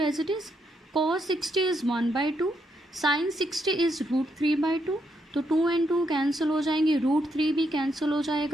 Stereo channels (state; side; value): normal; both; correlation 0.78